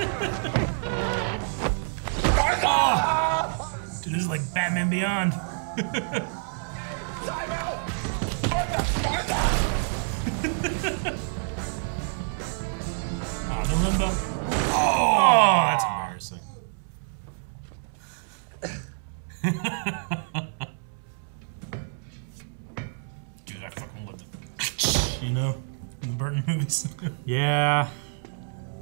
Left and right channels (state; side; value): silent; left; 60 dB below the other